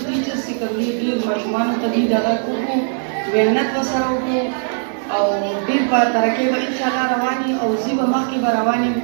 ټیچرس چې کوم دي ډېر ماشومانو ته دوی دغه وکړو محنت ورسره وکړو او ډېر په ترقۍ به انشاءالله روان یي او زی به مخکې به روان یم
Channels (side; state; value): left; silent; digital silence